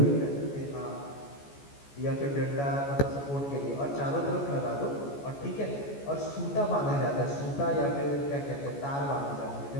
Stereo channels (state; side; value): late; right; 14 ms